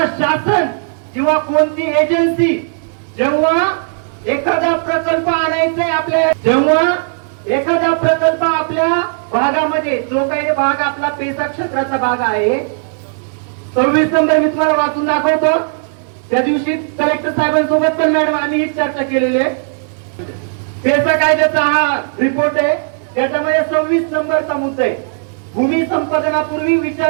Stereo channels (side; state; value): left; silent; digital silence